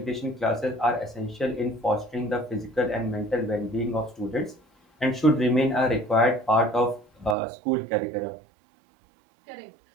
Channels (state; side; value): drops out; left; at 7.4 s